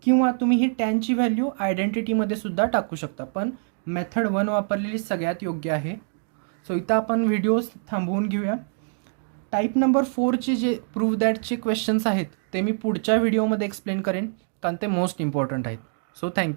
किंवा तुम्ही ही टॅनची व्हॅल्यू आयडेंटिटीमध्ये सुद्धा टाकू शकता, पण मेथड 1 वापरलेली सगळ्यात योग्य आहे. सो इथं आपण व्हिडिओ थांबवून घेऊया. टाईप नंबर 4चे जे प्रूव्ह दॅटचे क्वेश्चन्स आहेत ते मी पुढच्या व्हिडिओमध्ये एक्सप्लेन करेन, कारण ते मोस्ट इम्पॉर्टंट आहेत. So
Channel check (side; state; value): left; silent; 62 dB below the other